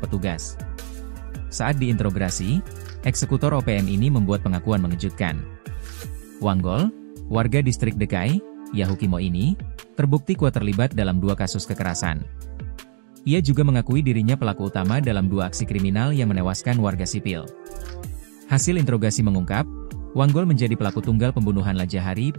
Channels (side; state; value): left; silent; 64 dB below the other